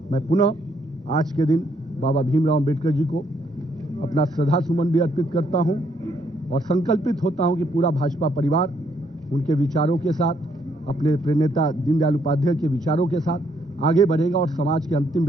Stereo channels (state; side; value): normal; both; correlation 0.71